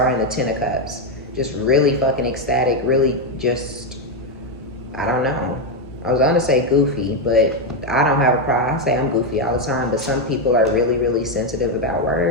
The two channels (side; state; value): both; normal; correlation 0.04